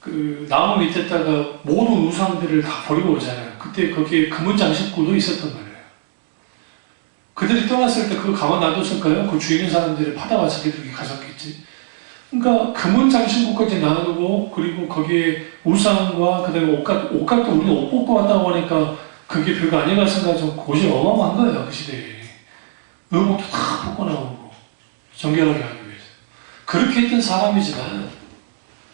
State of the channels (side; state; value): left; silent; 66 dB below the other